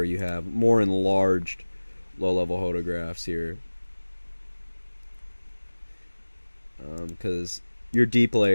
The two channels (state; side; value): inverted; both; correlation -1.00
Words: you have more enlarged low level photographs here, because your deep